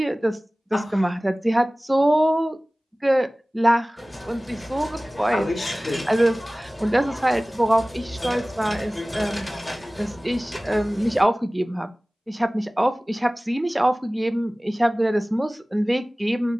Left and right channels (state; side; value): normal; both; correlation 0.98